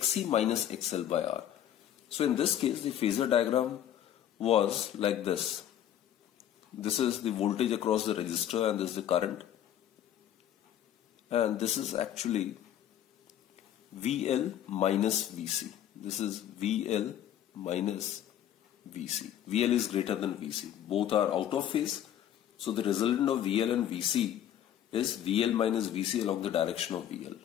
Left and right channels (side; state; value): right; quieter; 10.9 dB